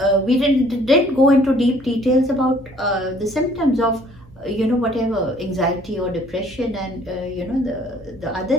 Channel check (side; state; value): right; noise; hum, 25 dB below the sound